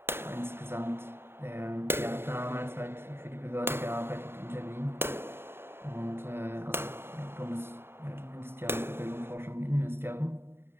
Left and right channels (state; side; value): late; left; 0.11 ms